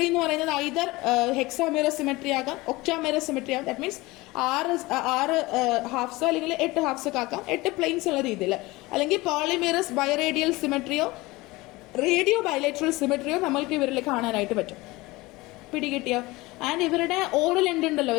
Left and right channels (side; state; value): right; quieter; 21.2 dB